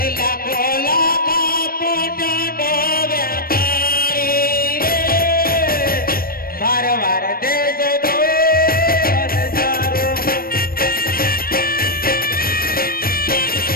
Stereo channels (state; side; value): late; right; 0.43 ms